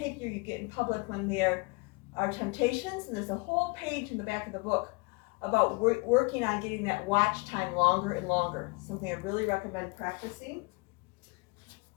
you get in public when there are temptations. And there's a whole page in the back of the book about working on getting that watch time longer and longer. Something I really recommend practicing.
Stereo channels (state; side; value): quieter; right; 28.7 dB